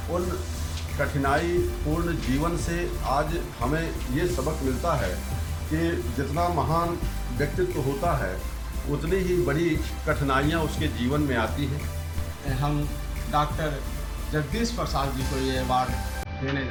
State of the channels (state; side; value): identical; both; correlation 1.00